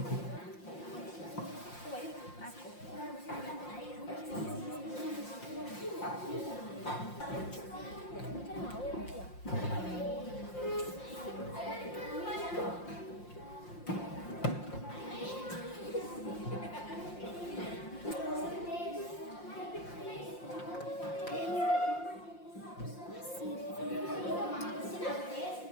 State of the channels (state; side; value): late; right; 5.7 ms